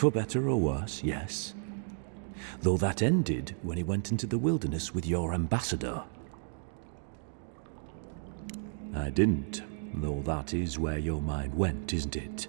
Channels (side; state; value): left; silent; digital silence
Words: better or worse, yes. Though that ended when he went into the wilderness with your ambassador. I didn't, though that is where your mind went, isn't it?